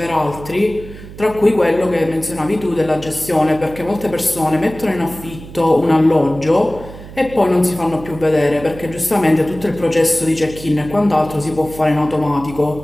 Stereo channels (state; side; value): noise; right; hum, 15 dB below the sound